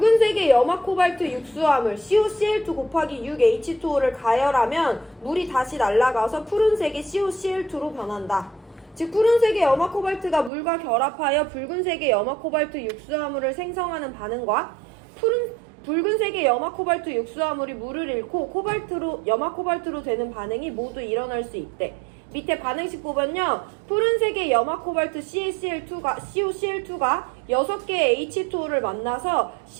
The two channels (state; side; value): drops out; left; at 10.5 s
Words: 염화 코발트 육수화물 COCl2 곱하기 6H2O를 가열하면 물이 다시 날아가서 푸른색의 COCl2로 변한다. 즉 푸른색의 염화 코발트가 물과 결합하여 붉은색의 염화 코발트 육수화물을 생성하는 반응과 붉은색의 염화 코발트 육수화물이 물을 잃고 염화 코발트로 되는 반응이 모두 일어날 수 있대. 밑에 반응식 보면요, 푸른색의 염화 코발트 COCl2가 6개의 H2O를 만나서